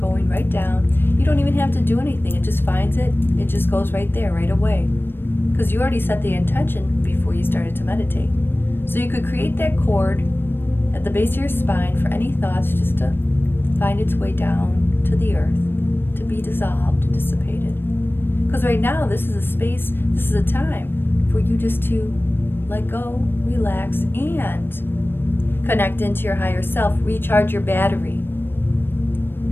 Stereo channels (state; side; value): late; right; 0.10 ms